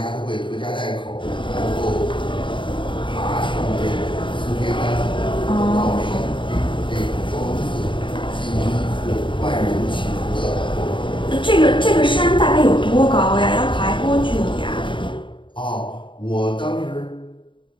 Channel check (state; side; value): late; right; 0.24 ms